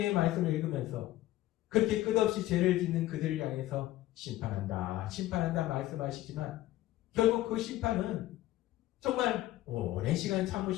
말씀을 읽으면서 그렇게 끝없이 죄를 짓는 그들을 향해서 심판한다, 심판한다 말씀하시지만 결국 그 심판은 정말 오랜 시간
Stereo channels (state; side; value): quieter; right; 15.6 dB